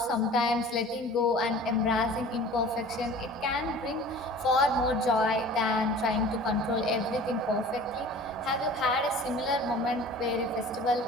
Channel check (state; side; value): normal; both; correlation 0.43